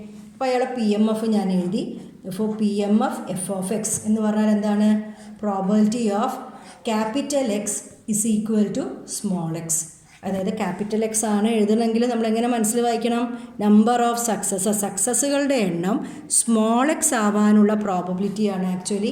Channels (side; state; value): both; identical; correlation 1.00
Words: അപ്പോൾ അയാളെ പി എം എഫ് ഞാൻ എഴുതി. ഇപ്പോൾ P M F F of X എന്ന് പറഞ്ഞാൽ എന്താണ്? Probability of capital X is equal to small X. അതായത് capital X ആണ് എഴുതണമെങ്കിൽ നമ്മളെങ്ങനെ മനസ്സിൽ വായിക്കണം? നമ്പർ ഓഫ് സക്സസ്സുകളുടെ എണ്ണം സ്മോൾ എക്സ് ആവാനുള്ള പ്രോബബിലിറ്റിയാണ് ആക്ച്വലി